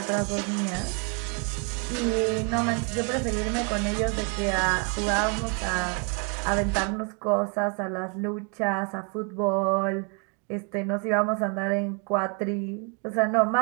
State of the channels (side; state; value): left; quieter; 36.3 dB